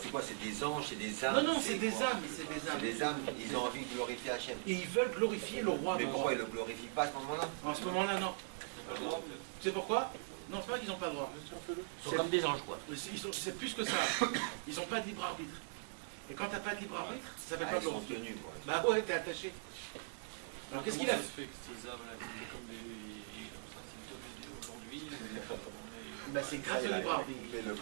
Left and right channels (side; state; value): left; silent; digital silence